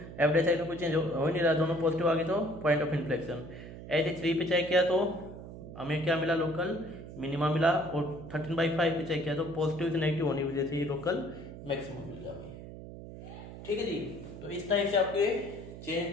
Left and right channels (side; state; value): right; noise; hum, 13 dB below the sound